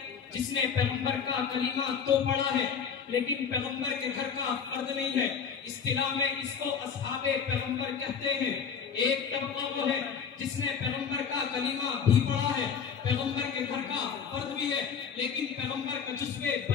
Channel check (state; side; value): quieter; right; 6.8 dB